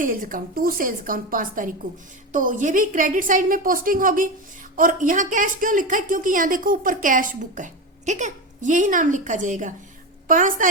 account, to sales account 5 तारीख को, तो ये भी क्रेडिट साइड में पोस्टिंग होगी। और यहाँ कैश क्यों लिखा है? क्योंकि यहाँ देखो ऊपर कैश बुक है। ठीक है, यही नाम लिखा जाएगा। 5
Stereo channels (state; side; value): normal; both; correlation 0.19